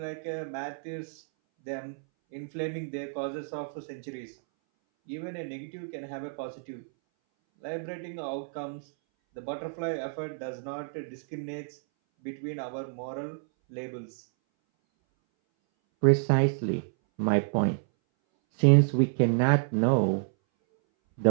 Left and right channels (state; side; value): silent; left; 58 dB below the other